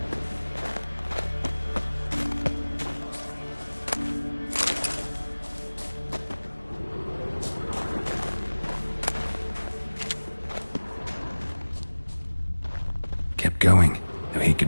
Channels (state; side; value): inverted; both; correlation -1.00